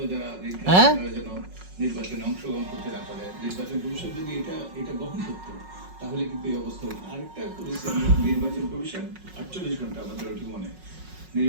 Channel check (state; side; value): late; left; 5.4 ms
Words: যারা ঋণ হ্যাঁ, তারা যেন নির্বাচনে অংশগ্রহণ করতে না পারে। নির্বাচন কমিশন যদি এটা গ্রহণ করতো তাহলে কিন্তু এই অবস্থা হতো। আরেকটা করেছি আমরা, নির্বাচন কমিশন 48 ঘন্টা, আমাদের ওটি মনে,